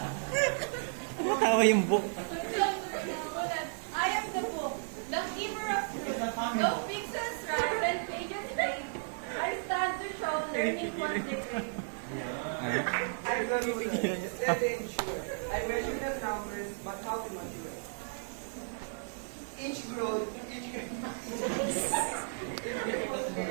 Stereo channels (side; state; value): left; silent; digital silence